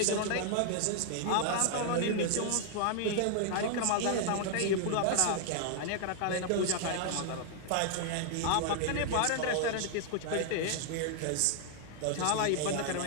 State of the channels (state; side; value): different; both; correlation 0.00